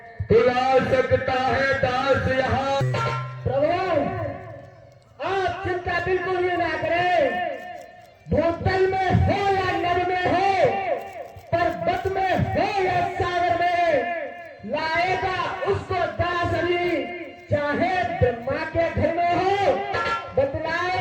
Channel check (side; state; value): both; identical; correlation 1.00